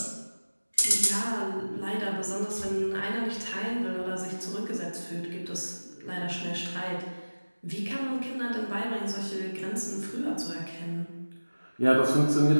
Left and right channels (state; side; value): inverted; both; correlation -1.00